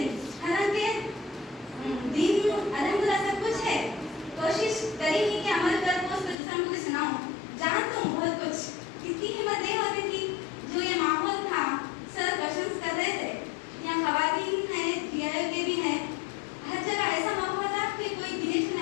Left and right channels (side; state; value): right; drops out; at 6.4 s